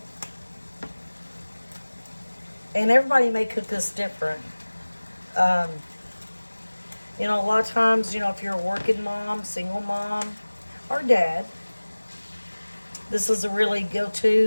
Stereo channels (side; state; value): both; inverted; correlation -1.00